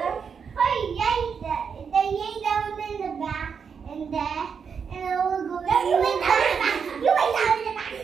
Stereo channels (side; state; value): left; quieter; 6.4 dB